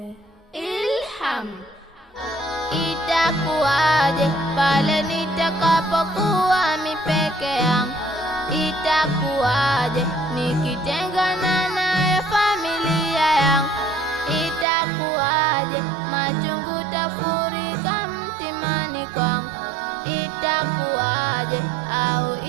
Ilham. Itakuwaje pale nitakapokuwa mipeke yangu? Itakuwaje nikitengana naye familia yangu? Itakuwaje machungu tafurika mtimani kwangu? Itakuwaje au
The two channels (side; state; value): left; drops out; at 14.7 s